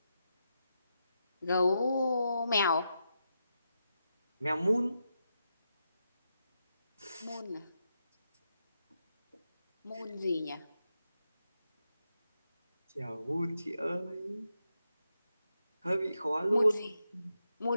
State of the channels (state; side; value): inverted; both; correlation -0.85